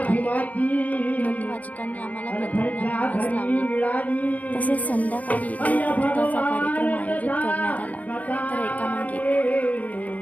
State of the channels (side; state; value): right; late; 0.075 ms